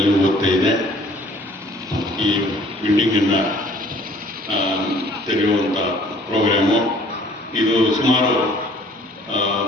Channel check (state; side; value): normal; both; correlation 0.55